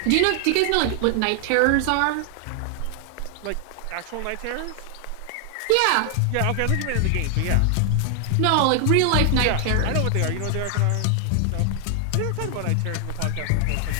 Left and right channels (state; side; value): different; both; correlation 0.00